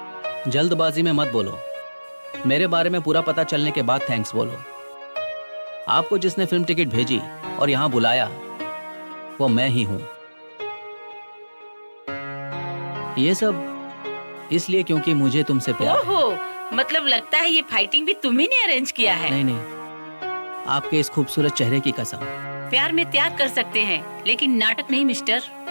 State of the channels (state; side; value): inverted; both; correlation -1.00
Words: जल्दबाजी में मत बोलो। मेरे बारे में पूरा पता चलने के बाद थैंक्स बोलो। आपको जिसने फिल्म टिकट भेजी और यहाँ बुलाया वो मैं ही हूँ। ये सब इसलिए क्योंकि मुझे तुमसे प्यार है। ओहो, मतलब लगता है ये फाइटिंग भी तुम्ही ने अरेंज किया है। नहीं नहीं, आपके इस खूबसूरत चेहरे की कसम। प्यार में त्याग कर सकते हैं लेकिन नाटक नहीं मिस्टर।